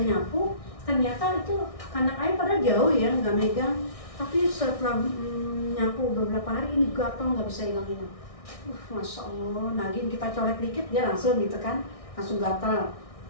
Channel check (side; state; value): right; late; 1.6 ms